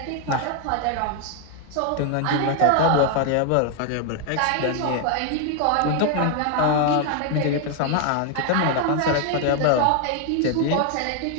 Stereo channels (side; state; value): both; different; correlation 0.00